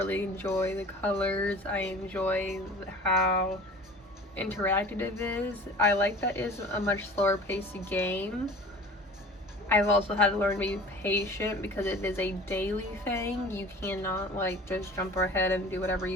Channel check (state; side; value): normal; both; correlation 0.42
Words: enjoy the colors, I enjoy how interactive it is. I like that it's a much slower paced game. I've also had to learn to be patient because it is a daily thing. You cannot just jump ahead and do whatever